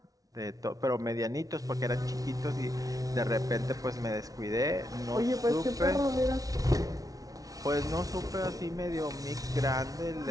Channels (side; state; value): left; late; 0.18 ms